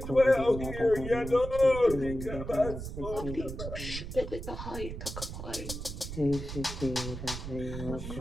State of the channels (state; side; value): noise; right; rumble, 7 dB below the sound